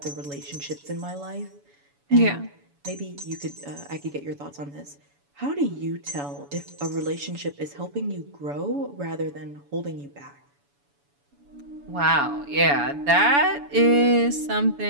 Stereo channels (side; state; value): left; late; 7.0 ms